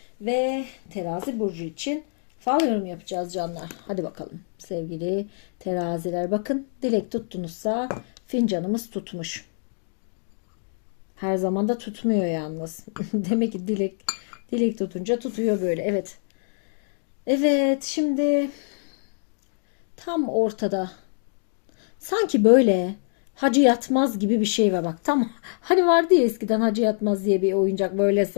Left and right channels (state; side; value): silent; right; digital silence